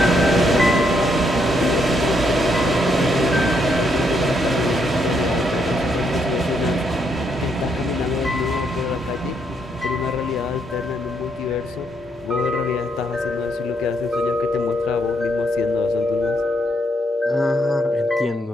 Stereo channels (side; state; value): both; normal; correlation 0.75